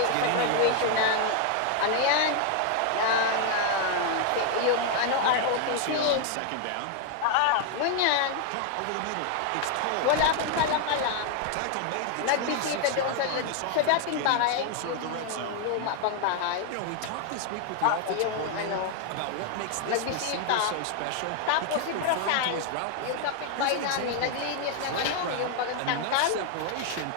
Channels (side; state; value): both; different; correlation 0.00